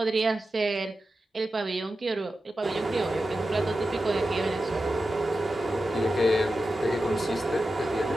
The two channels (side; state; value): both; normal; correlation 0.92